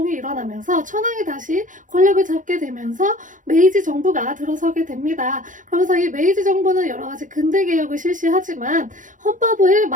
일어나면서 천황이 다시 권력을 잡게 되면서 메이지 정부가 들어서게 됩니다. 그러면서 이 메이지 정부는 여러 가지 근대 개혁을 실시하지만 헌법을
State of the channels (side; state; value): left; late; 0.38 ms